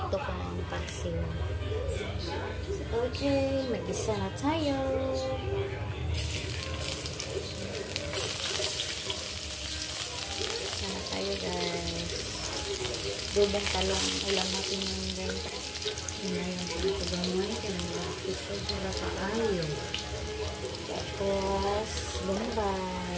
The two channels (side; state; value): both; identical; correlation 1.00